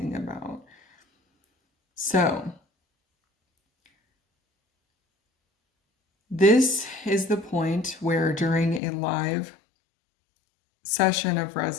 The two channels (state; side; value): drops out; right; at 8.8 s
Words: about. So, this is the point where during a live session of